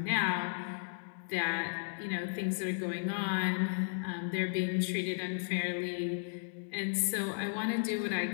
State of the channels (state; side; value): silent; right; digital silence